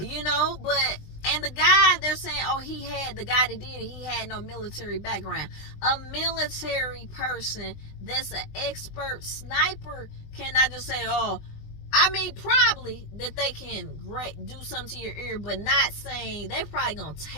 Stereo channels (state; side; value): late; right; 20 ms